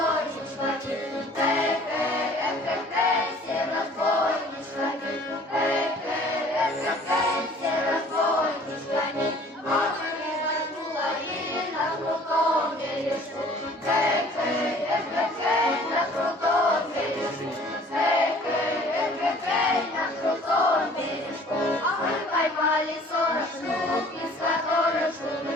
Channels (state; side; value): normal; both; correlation 0.52